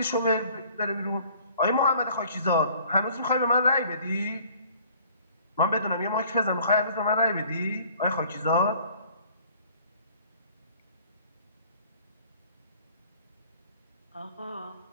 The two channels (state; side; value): inverted; both; correlation -0.53